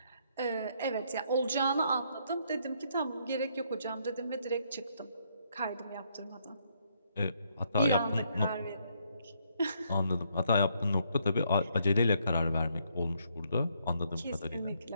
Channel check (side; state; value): both; inverted; correlation -0.72